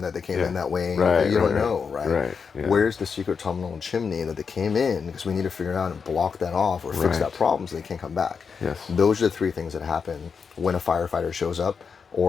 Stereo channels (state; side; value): quieter; right; 5.8 dB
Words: that they came in that way. You don't know, right? Where's the secret tunnel and chimney that they came in? Because we need to figure out and block that off or fix that problem so they can't come back. Those are the three things that happen when a firefighter shows up